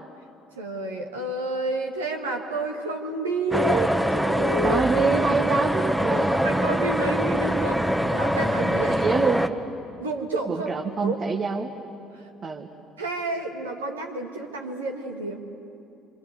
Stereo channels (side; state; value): both; normal; correlation 0.73